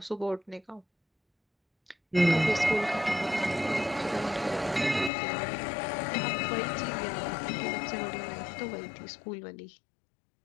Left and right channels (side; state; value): right; drops out; at 5.1 s